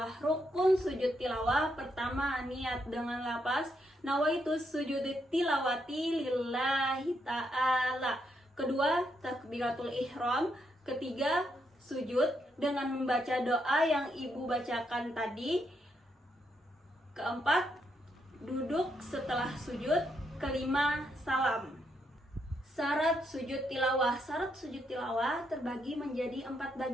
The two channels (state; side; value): normal; both; correlation 0.78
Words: Rukun sujud tilawah pertama, niat dengan lafaz nawaitu sujud tilawati lillahi ta'ala. Kedua, takbiratul ihram. Ketiga, sujud dengan membaca doa yang Ibu bacakan tadi. Keempat, duduk setelah sujud. Kelima, salam. Syarat sujud tilawah. Syarat sujud tilawah terbagi menjadi 4